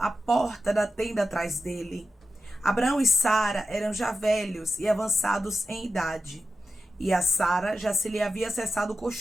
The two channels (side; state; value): both; normal; correlation 0.91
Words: porta da tenda atrás dele. Abraão e Sara eram já velhos e avançados em idade, e a Sara já se lhe havia cessado o